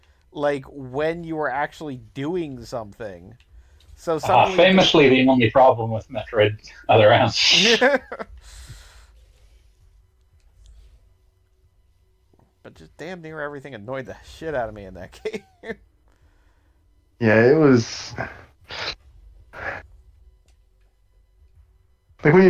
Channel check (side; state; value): both; identical; correlation 1.00